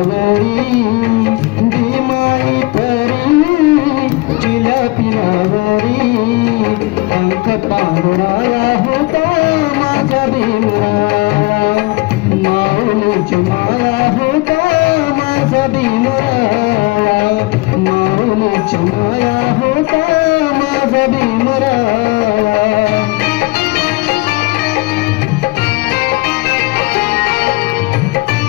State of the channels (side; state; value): right; quieter; 23.7 dB